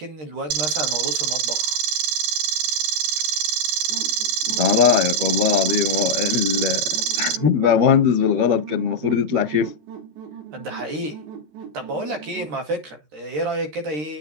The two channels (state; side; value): late; left; 14 ms